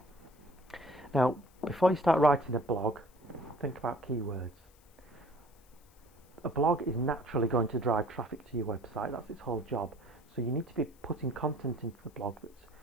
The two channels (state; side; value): noise; left; hiss, 30 dB below the sound